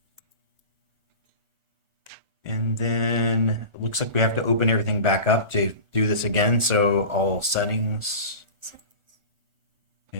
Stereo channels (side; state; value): left; late; 1.4 ms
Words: And then it looks like we have to open everything back up to do this again. So all settings.